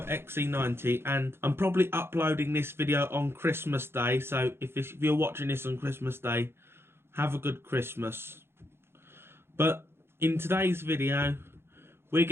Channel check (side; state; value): left; late; 0.12 ms